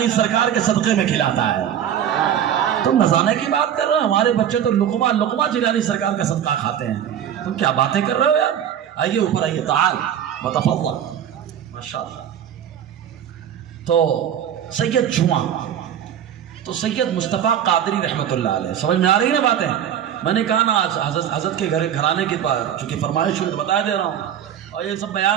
سرکار کے صدقے میں کھلاتا ہے. تم نذرانے کی بات کر رہے ہو، ہمارے بچے تو لقمہ جیلانی سرکار کا صدقہ کھاتے ہیں. تم کیا باتیں کر رہے ہو یار؟ آئیے اوپر آئیے، تعال متفضل. ماشاءاللہ. تو سید جمعہ، تو سید مصطفیٰ قادری رحمۃ اللہ علیہ، سمجھ میں آ رہی نا باتیں؟ میں نے کہا نا آج حضرت کے گھرانے کی چونکہ فرمائش ہوئی تو بتا دے رہا ہوں. اور یہ سب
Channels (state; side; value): quieter; left; 9.7 dB